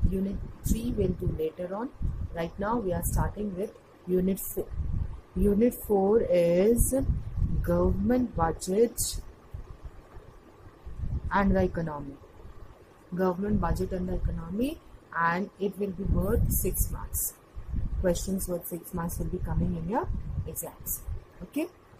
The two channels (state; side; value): identical; both; correlation 1.00